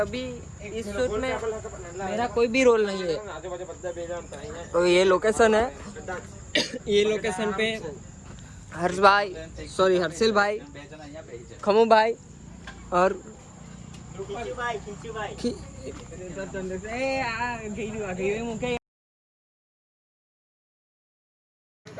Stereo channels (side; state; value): both; identical; correlation 1.00